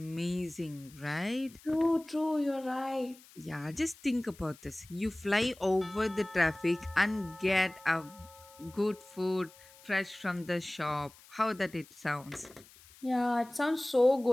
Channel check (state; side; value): noise; left; hiss, 23 dB below the sound